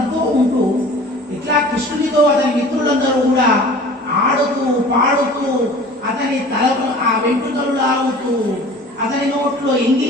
ఉంటూ ఇట్లా కృష్ణునితో అతని మిత్రులందరూ కూడా ఆడుతూ పాడుతూ అతని తల ఆ వెంట్రుకలు లాగుతూ అతని నోట్లో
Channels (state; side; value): normal; both; correlation 0.43